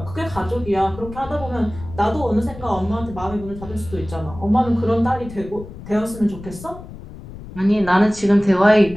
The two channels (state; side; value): noise; left; rumble, 14 dB below the sound